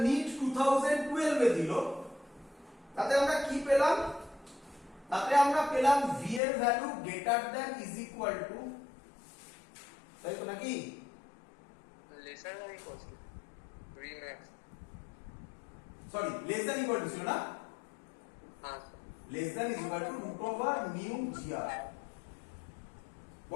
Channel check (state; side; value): drops out; right; at 6.4 s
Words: নিট 2012 এ দিল, তাতে আমরা কি পেলাম? তাতে আমরা পেলাম v এর value greater than is equal to, তাই তো নাকি? Lesser than equal to v max। Sorry, less than equal to ছিল না? হ্যাঁ স্যার। Less than is equal to root over mu g r.